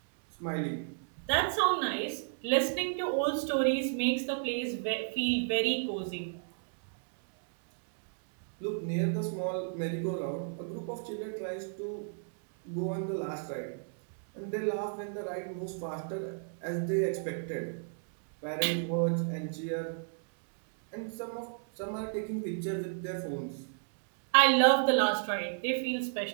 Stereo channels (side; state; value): left; silent; digital silence